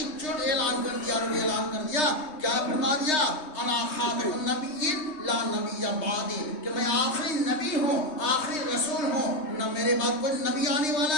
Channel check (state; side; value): late; right; 3.3 ms